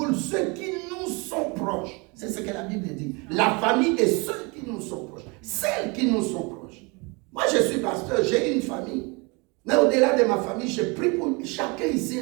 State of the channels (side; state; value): left; quieter; 29.0 dB